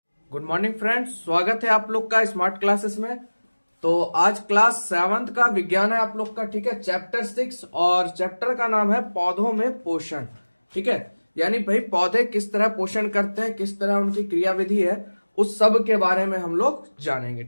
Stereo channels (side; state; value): both; inverted; correlation -1.00